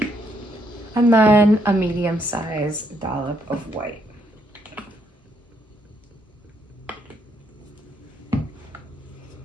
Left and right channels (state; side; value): normal; both; correlation 0.73